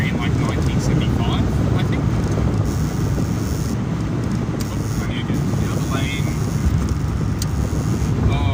in like 1975, I think. Oh, I need to get the other lane.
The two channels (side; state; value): both; identical; correlation 1.00